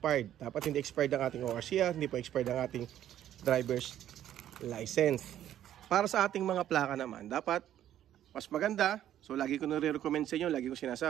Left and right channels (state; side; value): quieter; left; 11.5 dB